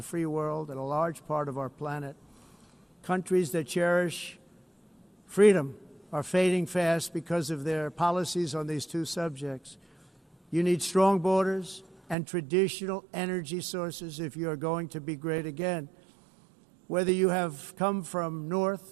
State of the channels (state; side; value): drops out; left; at 12.2 s